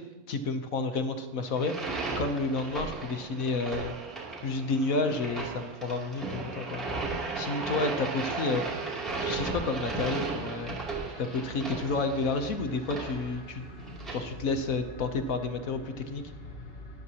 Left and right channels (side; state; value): both; normal; correlation 0.18